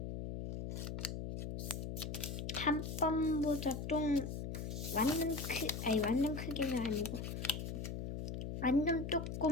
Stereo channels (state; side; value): noise; left; hum, 5 dB below the sound